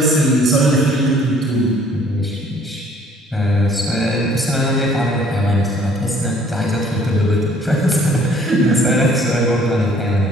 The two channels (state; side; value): normal; both; correlation 0.58